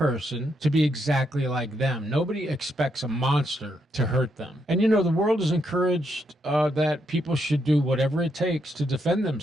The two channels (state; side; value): normal; both; correlation 0.78